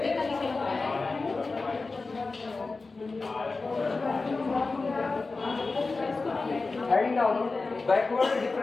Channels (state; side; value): quieter; right; 3.8 dB